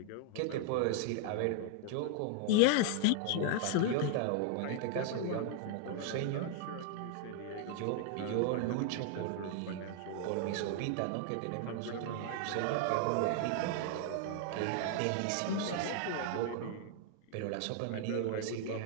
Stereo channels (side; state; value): both; different; correlation 0.00